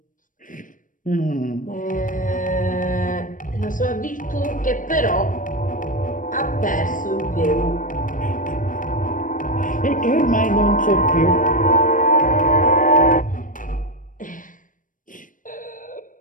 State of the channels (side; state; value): right; late; 0.38 ms